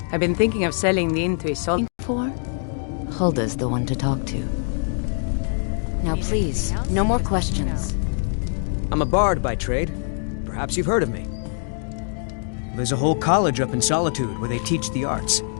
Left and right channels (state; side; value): silent; right; 62 dB below the other